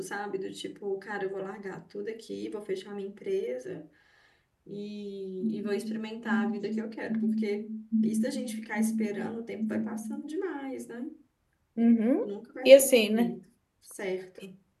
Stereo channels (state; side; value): identical; both; correlation 1.00